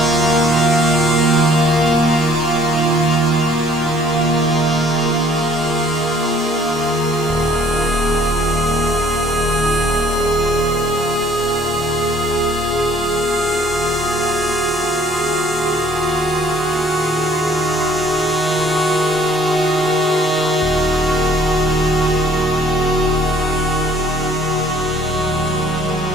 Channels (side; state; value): both; normal; correlation 0.57